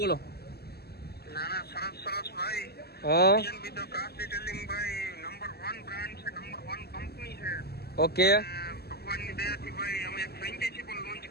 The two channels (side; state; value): right; late; 0.46 ms